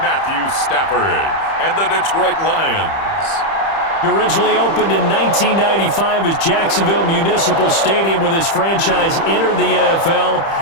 Matthew Stafford and the Detroit Lions. Originally opened in 1995 as Jacksonville Municipal Stadium when this franchise entered the NFL.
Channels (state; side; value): late; right; 30 ms